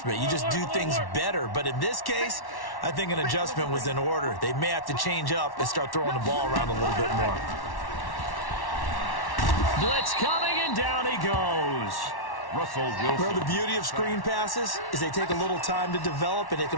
You just do things better. But in this case, I think an adjustment was in order. They may have to change up and start throwing the ball around a little bit more. Blitz coming, and down he goes. Russell Wilson. Well, the beauty of screen passes is they take a little time to develop, and they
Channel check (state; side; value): late; right; 1.1 ms